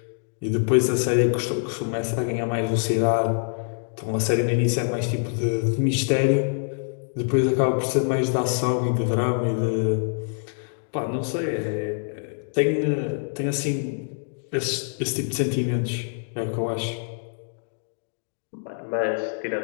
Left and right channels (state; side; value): silent; right; digital silence